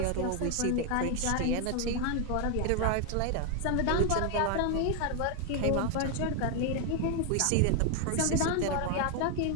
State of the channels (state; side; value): different; both; correlation 0.01